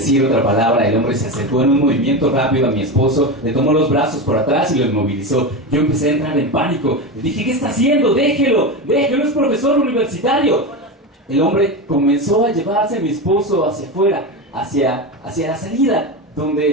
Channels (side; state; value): both; normal; correlation 0.19